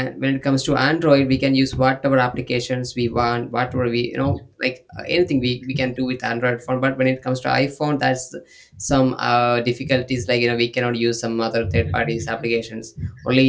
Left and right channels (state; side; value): identical; both; correlation 1.00